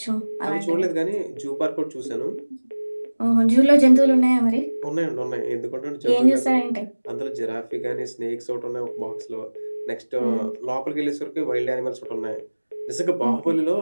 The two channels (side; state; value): both; inverted; correlation -1.00